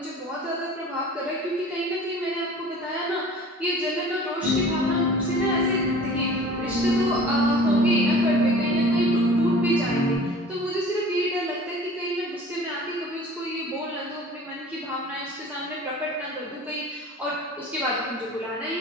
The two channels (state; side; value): normal; both; correlation 0.44